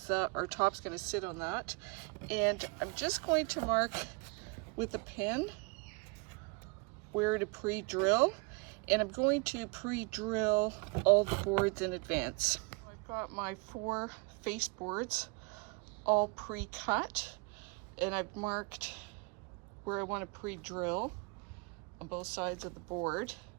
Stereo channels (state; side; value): quieter; left; 30.7 dB